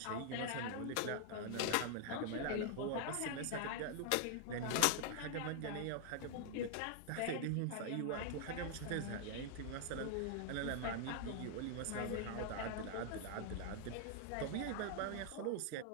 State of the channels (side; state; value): both; different; correlation 0.00